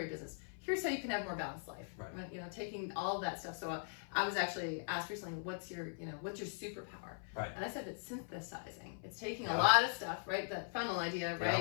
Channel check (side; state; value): right; silent; 51 dB below the other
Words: your business. Here's how you can have a more balanced life. Right. Taking all that stuff. So I was actually asked recently, what's your superpower? Right. And I said it's synthesizing. It's taking a lot of stuff, right? That funnel idea,